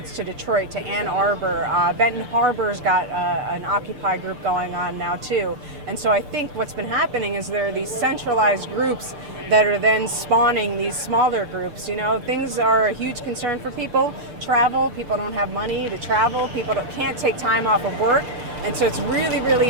to Detroit, to Ann Arbor. Benton Harbor's got an Occupy group going on now too. And so I think what's been happening is there are these centralized groups that are then spawning these smaller groups. You know, things are a huge concern for people. Travel, people don't have money to travel, people can't take time off of work. And so it's really, really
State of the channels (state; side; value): late; left; 6.7 ms